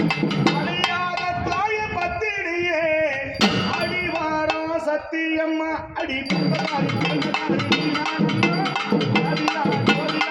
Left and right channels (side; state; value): both; identical; correlation 1.00